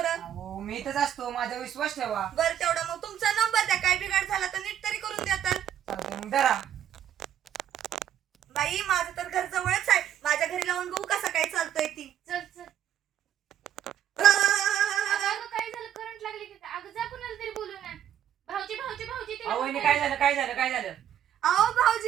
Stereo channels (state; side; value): quieter; left; 10.1 dB